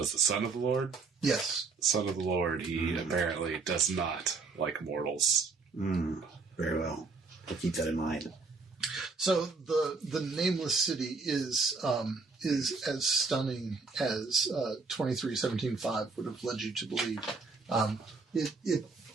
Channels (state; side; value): quieter; left; 4.3 dB